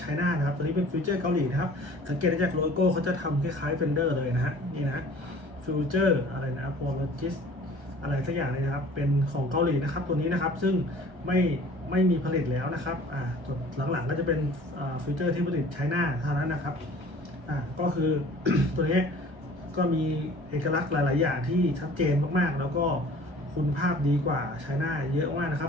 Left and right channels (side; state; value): left; late; 1.3 ms